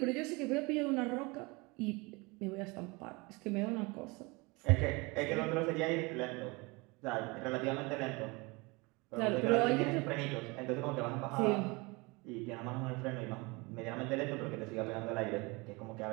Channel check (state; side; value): quieter; left; 26.1 dB